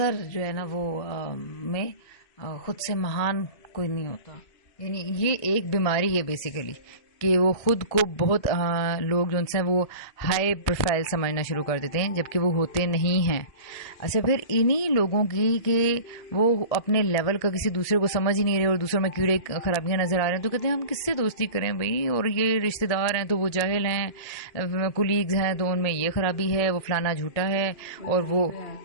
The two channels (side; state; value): right; late; 1.8 ms